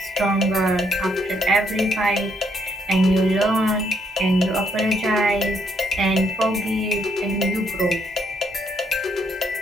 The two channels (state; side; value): normal; both; correlation 0.73